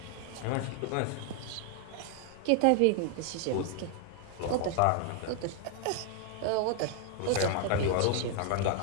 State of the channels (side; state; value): both; different; correlation 0.00